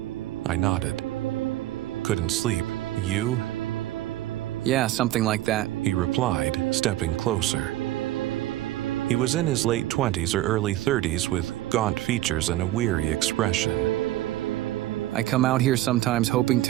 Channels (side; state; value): left; quieter; 15.1 dB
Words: I nodded. Couldn't sleep. You? Yeah, something like that. He replied, stepping closer. He was in his late 20s or early 30s with gaunt features and a weary expression. I come out here sometimes hoping